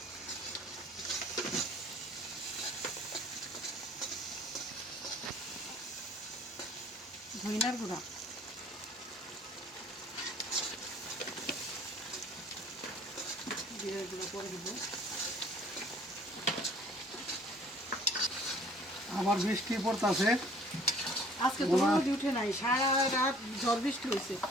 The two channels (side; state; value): both; normal; correlation 0.54